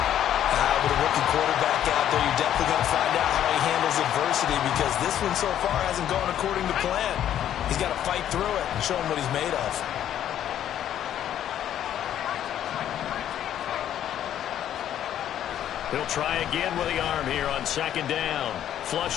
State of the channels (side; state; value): right; quieter; 10.8 dB